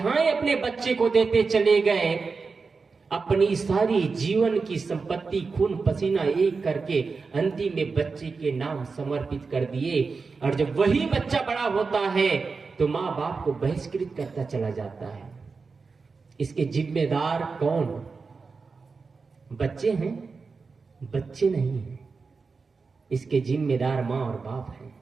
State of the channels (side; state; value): left; quieter; 4.6 dB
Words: अपने बच्चे को देते चले गए। अपनी सारी जीवन की संपत्ति खून पसीना एक करके अंतिम में बच्चे के नाम समर्पित कर दिए। और जब वही बच्चा बड़ा होता है तो माँ बाप को बहिष्कृत करता चला जाता है। इसके जिम्मेदार कौन? बच्चे हैं? बच्चे नहीं हैं। इसके जिम्मेदार माँ और बाप हैं।